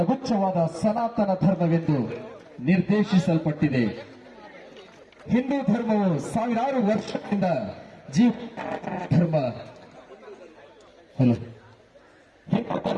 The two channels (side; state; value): both; identical; correlation 1.00